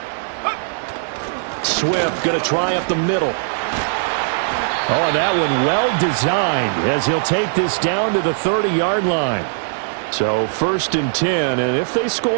Swift going to try up the middle. Oh, and that one well designed as he'll take this down to the 30-yard line. So 1st and 10, and if they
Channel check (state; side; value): silent; left; digital silence